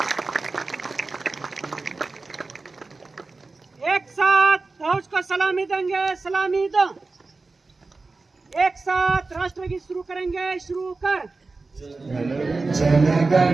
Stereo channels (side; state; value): left; quieter; 3.7 dB